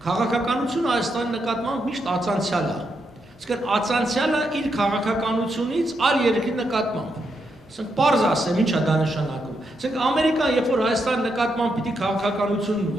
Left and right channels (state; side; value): normal; both; correlation 0.81